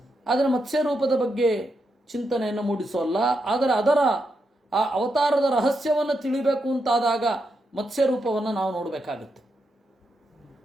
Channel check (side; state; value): both; normal; correlation 0.83